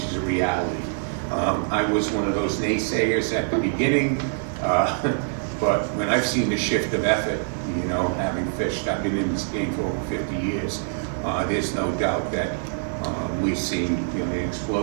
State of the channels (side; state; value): left; silent; 62 dB below the other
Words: is a reality. I was one of those naysayers at the beginning, but when I've seen the shift of effort, you know, having fished, I've been in this game for over 50 years, there's no doubt that we're seeing, you know, the